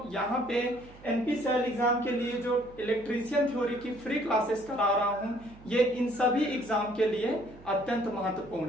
यहाँ पे एनपीसीआई एग्जाम के लिए जो इलेक्ट्रीशियन थ्योरी की फ्री क्लासेस करा रहा हूँ, ये इन सभी एग्जाम के लिए अत्यंत महत्वपूर्ण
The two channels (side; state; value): right; noise; hum, 21 dB below the sound